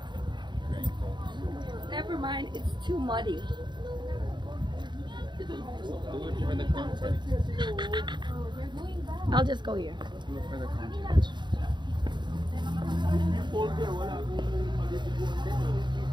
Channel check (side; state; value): left; late; 0.22 ms